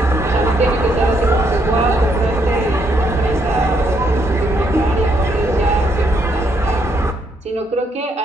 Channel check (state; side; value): normal; both; correlation 0.74